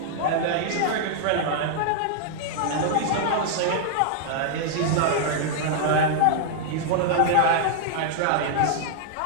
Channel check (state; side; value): different; both; correlation -0.01